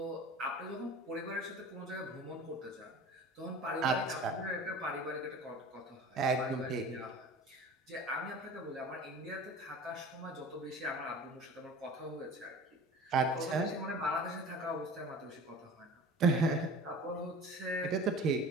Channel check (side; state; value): both; normal; correlation 0.40